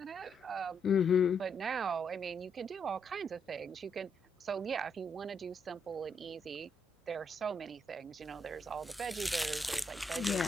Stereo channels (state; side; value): normal; both; correlation 0.77